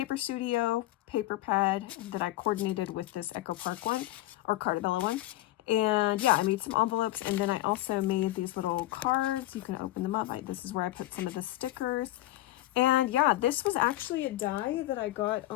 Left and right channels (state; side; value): quieter; right; 16.2 dB